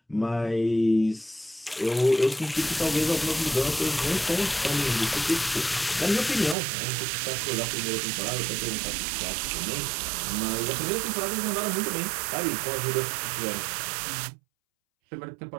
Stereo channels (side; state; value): left; drops out; at 6.6 s